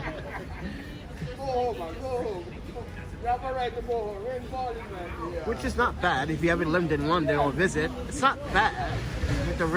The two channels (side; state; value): both; identical; correlation 1.00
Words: Which is not bad if you ever lived in London or visit. It's not bad with the